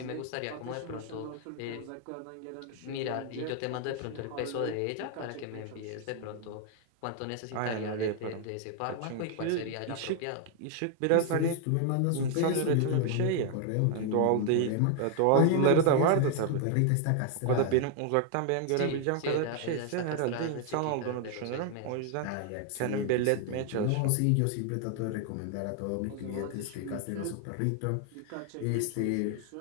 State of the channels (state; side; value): different; both; correlation 0.00